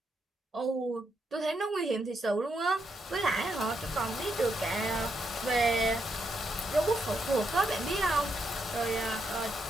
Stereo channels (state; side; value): normal; both; correlation 0.80